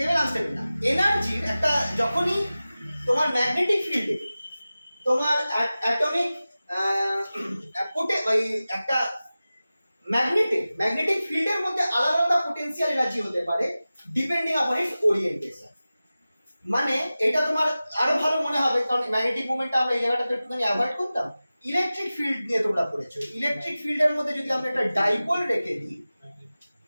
আনস্টেবল না, এনার্জির একটা, যখনই তোমার ম্যাগনেটিক ফিল্ডে তোমার অ্যাটমিক ওই একটা ম্যাগনেটিক ফিল্ডের মধ্যে আলাদা আলাদা পোটেনশিয়াল এনার্জি হতে পারে ডিপেন্ডিং আপন ইটস ওরিয়েন্টেশন। মানে এটা তোমার আরো ভালো মনে হবে, কারণ ম্যাগনেটিক মোমেন্টটা আমরা এই জায়গাটাতে একটুখানি অ্যাভয়েড করতাম। ইলেকট্রিক ফিল্ড নিয়ে তোমরা পড়েছো, ইলেকট্রিক ফিল্ডের মধ্যে যদি আমরা একটা ডাইপোল রেখে দিই,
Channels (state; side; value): inverted; both; correlation -0.96